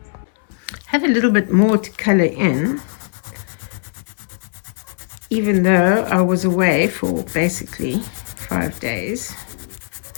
Have a little bit more to color in, even though I was away for basically 5 days.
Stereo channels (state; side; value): silent; right; 65 dB below the other